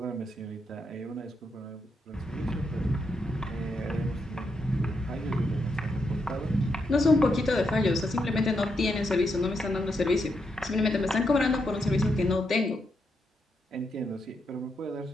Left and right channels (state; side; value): normal; both; correlation 0.82